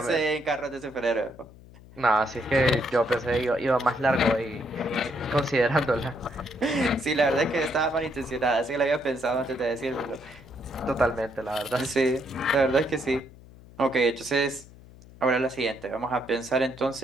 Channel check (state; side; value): noise; left; hum, 21 dB below the sound